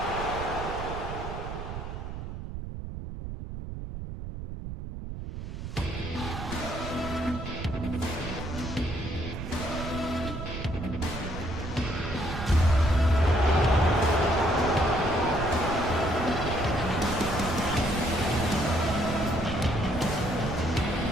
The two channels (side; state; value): right; noise; rumble, 8 dB below the sound